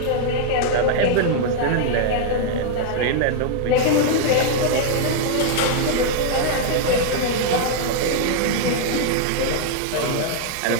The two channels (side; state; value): both; different; correlation -0.01